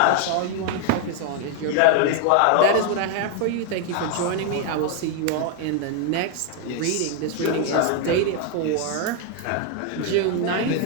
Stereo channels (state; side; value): different; both; correlation 0.00